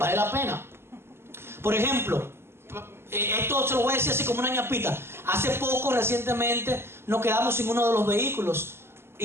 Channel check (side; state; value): left; late; 0.12 ms